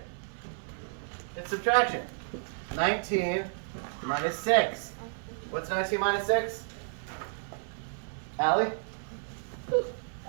It's subtraction. 19 minus 6. What's 19 minus 6? Allie?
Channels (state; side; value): silent; left; 57 dB below the other